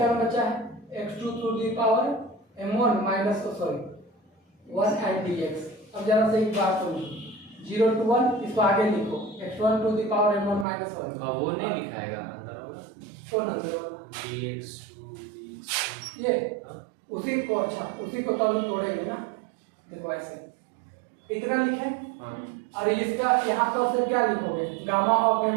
बचा है x2 to the power m1 minus, sorry 1 and dx। अब जरा से एक बात समझो, 0 to 1 इसको आगे लिखो, x1 to the power m1 minus 1। अब वो नहीं लिखाएगा अंदर होगा, कौन अंदर वाला, dx2 ये उसी को, अच्छा उसी को तो हम तोड़ेंगे ना। देखो ऐसे इतना लिखे, और इसका यहाँ पर फिर क्या लिखोगे, gamma of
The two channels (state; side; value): drops out; left; at 10.7 s